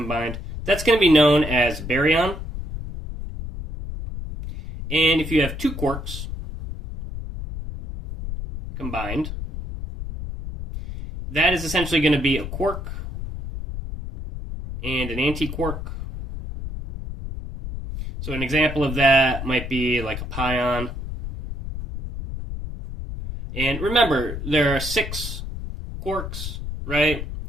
that's going to be known as baryon. And if you have 2 quarks combined, that is essentially going to be a quark and an antiquark. So an example of that might be like a pion. And remember, there are 6 quarks, right?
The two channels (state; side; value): noise; left; rumble, 7 dB below the sound